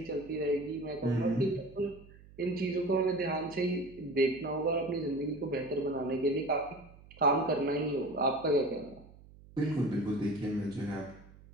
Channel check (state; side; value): noise; right; hum, 22 dB below the sound